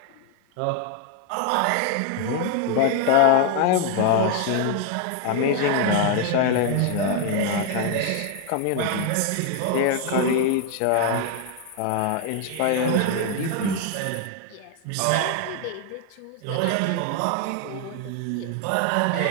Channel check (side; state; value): both; different; correlation 0.01